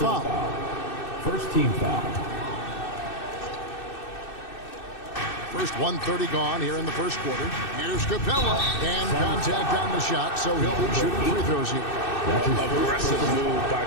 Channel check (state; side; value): late; right; 2.6 ms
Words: First team foul. First 1:30 gone here in the first quarter. Here's Capella. And contact on the shot, so he'll be shooting free throws here. Aggressive move by